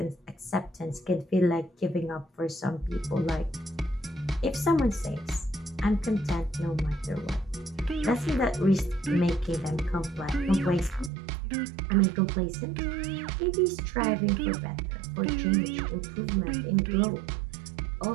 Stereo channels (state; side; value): drops out; left; at 11.1 s